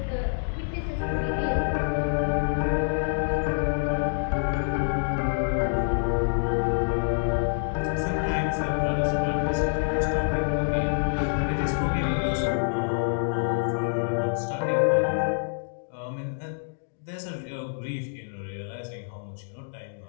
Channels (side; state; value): right; silent; digital silence